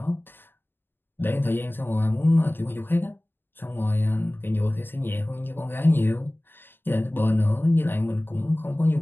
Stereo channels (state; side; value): late; right; 0.099 ms